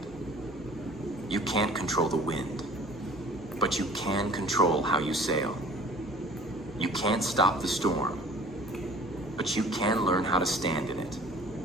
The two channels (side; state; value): both; normal; correlation 0.49